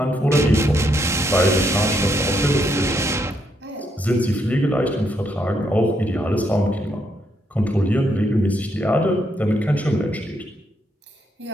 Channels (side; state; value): both; normal; correlation 0.76